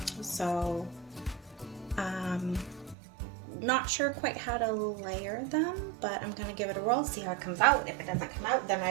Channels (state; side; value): drops out; left; at 3.0 s